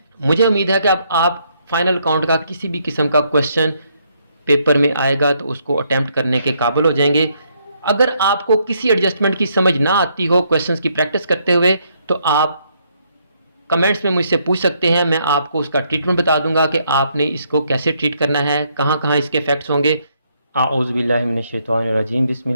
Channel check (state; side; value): inverted; both; correlation -0.72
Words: मुझे उम्मीद है कि अब आप फाइनल अकाउंट का किसी भी किस्म का क्वेश्चन पेपर में आएगा तो उसको अटेम्प्ट करने के काबिल हो जाएंगे। अगर आपको किसी एडजस्टमेंट की समझ ना आती हो क्वेश्चंस की प्रैक्टिस करते हुए, तो आप कमेंट्स में मुझसे पूछ सकते हैं, मैं आपको उसका ट्रीटमेंट बता दूंगा कि आपने इसको कैसे ट्रीट करना है, कहाँ कहाँ इसके इफेक्ट्स होंगे। आऊज़ुबिल्लाहिमिनश्शैतानिर्रजीम,